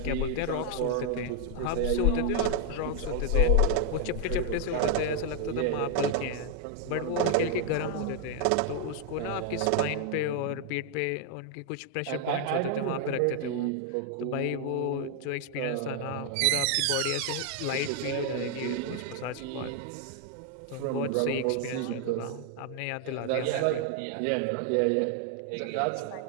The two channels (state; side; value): different; both; correlation 0.00